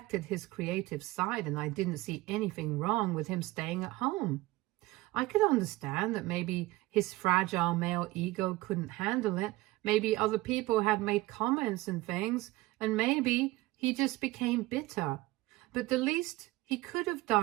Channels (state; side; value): quieter; left; 19.5 dB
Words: his creative side, and I didn't see anything wrong with him staying at home. I could understand that maybe his fragile male ego couldn't handle it. Maybe other people had made comments and things, and maybe he just became bitter. But the least he could have